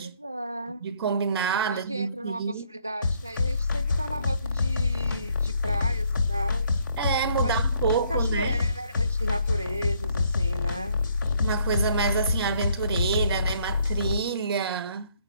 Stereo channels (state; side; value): inverted; both; correlation -0.67